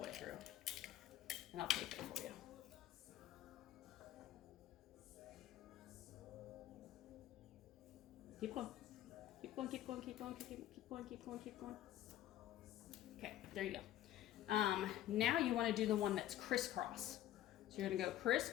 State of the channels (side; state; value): right; quieter; 13.2 dB